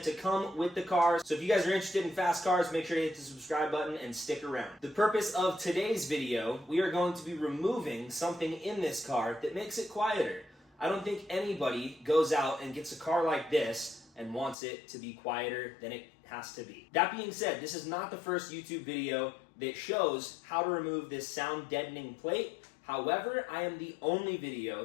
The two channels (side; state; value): right; drops out; at 14.6 s